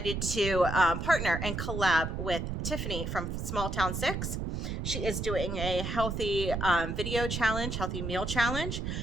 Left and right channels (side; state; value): right; noise; rumble, 3 dB below the sound